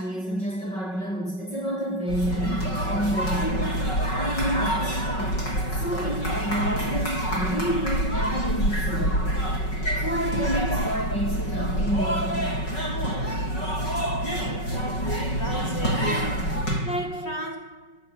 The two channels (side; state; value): right; late; 5.3 ms